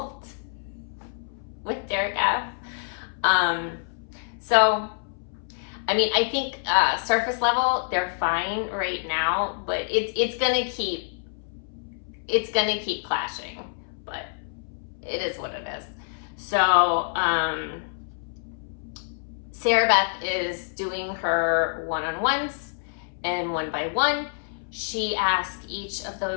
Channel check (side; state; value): right; silent; 60 dB below the other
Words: with Derek F. So, I mean, I think surface level, they're fine right now, but it's gonna keep clashing, but it is what it is. So, Sarah Beth is doing her one-on-ones, and one by one, she asked each of